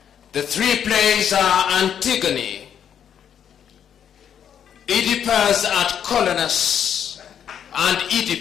The 3 plays are Antigone, Oedipus at Colonus, and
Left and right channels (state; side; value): quieter; right; 8.8 dB